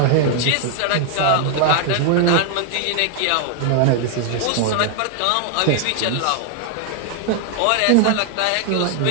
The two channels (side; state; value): both; different; correlation 0.00